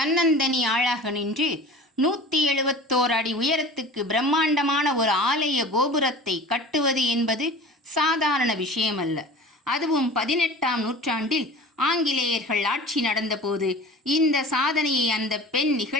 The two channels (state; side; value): normal; both; correlation 0.39